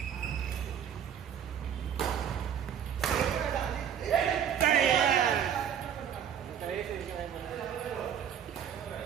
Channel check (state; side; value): quieter; left; 8.7 dB